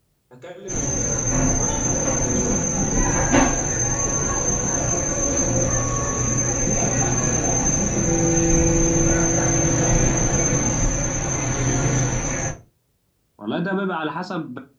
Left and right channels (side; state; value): both; identical; correlation 1.00